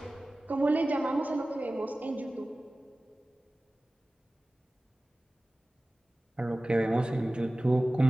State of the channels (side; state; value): both; normal; correlation 0.97